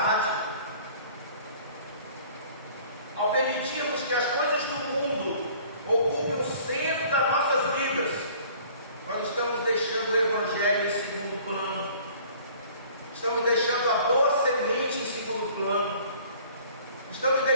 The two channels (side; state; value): both; inverted; correlation -0.52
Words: Ao permitirmos que as coisas do mundo ocupem o centro das nossas vidas, nós estamos deixando o Evangelho em segundo plano, estamos deixando a boa semente em segundo plano, estamos